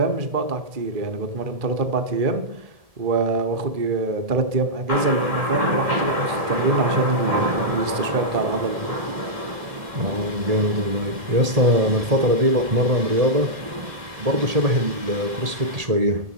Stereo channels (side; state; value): left; late; 1.7 ms